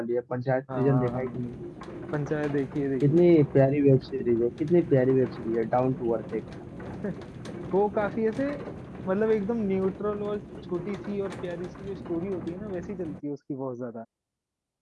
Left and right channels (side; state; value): both; identical; correlation 1.00